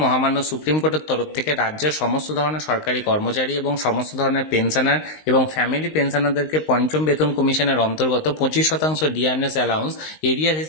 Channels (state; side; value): late; right; 19 ms